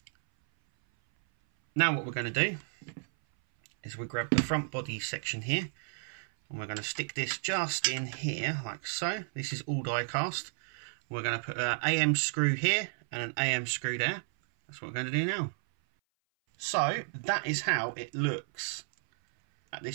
Now what we're going to do is we grab the front body section here and we're going to stick this just in here like so. This is all die cast. We're going to put an AM screw here and an AM screw there. That's what we're going to do now. So that is how it looks at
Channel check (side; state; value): left; silent; 56 dB below the other